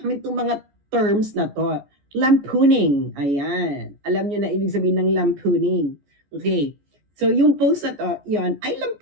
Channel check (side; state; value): left; late; 14 ms